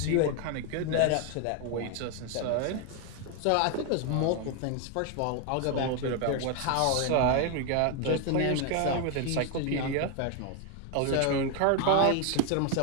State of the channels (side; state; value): both; different; correlation 0.01